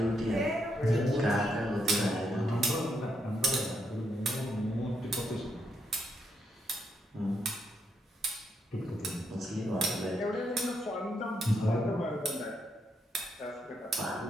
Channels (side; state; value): both; normal; correlation 0.78